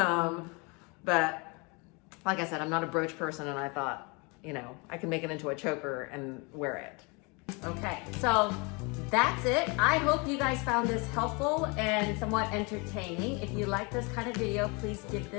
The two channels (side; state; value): right; quieter; 30.2 dB